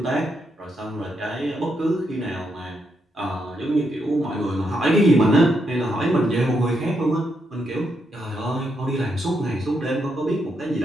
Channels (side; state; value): both; normal; correlation 0.80